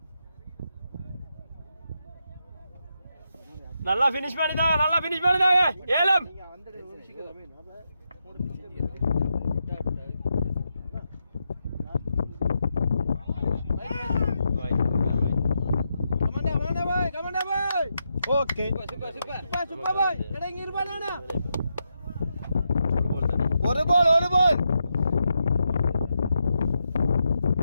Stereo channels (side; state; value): both; inverted; correlation -0.84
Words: நல்லா ஃபினிஷ் பண்ணிட்டாங்க ஏலம் ஓகே சூப்பர் பாய் எடா இங்க இருப்பானா ஒரு பால் பால் வந்து நம்ம